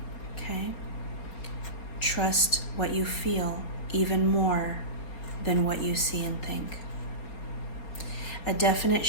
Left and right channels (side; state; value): right; late; 4.3 ms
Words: Okay? Trust what you feel even more than what you see and think. A definite